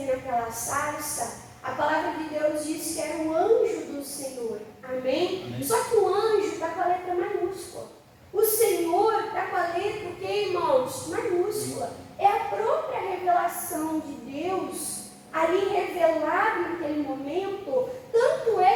naquela sarça. A palavra de Deus diz que era o anjo do Senhor. Amém? Amém. Só que o anjo está com a letra maiúscula. O Senhor está com a letra, o que, irmãos? Maiúscula. É a própria revelação de Deus ali revelado naquele momento. Tanto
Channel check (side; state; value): both; identical; correlation 1.00